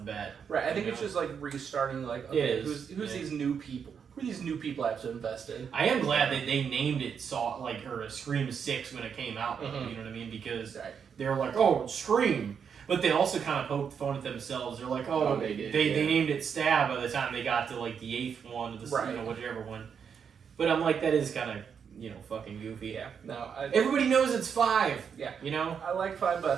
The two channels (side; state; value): left; quieter; 7.0 dB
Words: bat. right. I think you it's know? just like restarting. Like It okay, is, who's yeah. these new people? Who are these new people I have to invest in? I am glad that they named it Scream 6 when it came out. You know what I mean? Because Right. they're like, oh, Scream. But they also kind of poked fun at themselves. They're like, oh, they did, they yeah. named it Stab by the time they got to like the 8th one, or the Right. whichever one. But I'm like, that is kind of fucking goofy. Yeah. No. Everybody knows it's 5. Yeah. You know. I like 5, but I